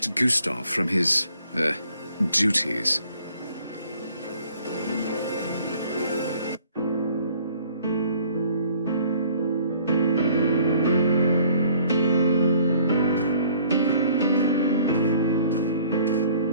Gustav from his, duties.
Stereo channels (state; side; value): inverted; both; correlation -0.58